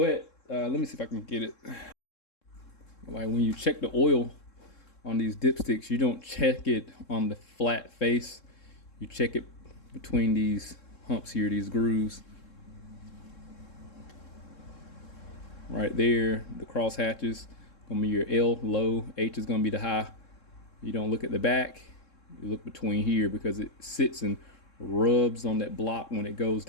let me see if I can get it. Like when you check the oil on these dipsticks, you don't check it on the flat face. You check it between these humps here, these grooves. Right there, the cross hatches gonna be your L low, H is gonna be the high. You don't look at the back, you look between here, because it sits and rubs on that block when it goes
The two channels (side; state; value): right; late; 3.7 ms